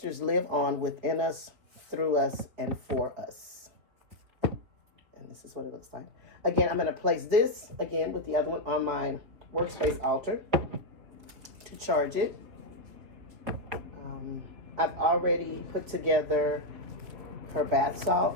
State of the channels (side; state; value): left; late; 4.2 ms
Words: live on within us, through us, and for us. And this is what it looks like. Again, I'm going to place this, again, with the other one on my workspace altar to charge it. I've already put together her bath salt,